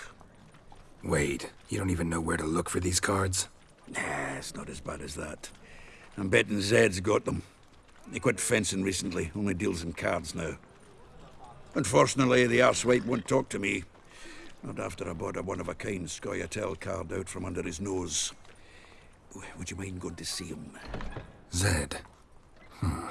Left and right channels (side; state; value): both; identical; correlation 1.00